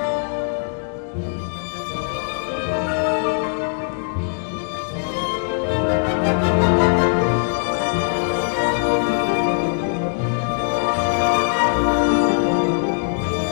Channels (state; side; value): silent; right; digital silence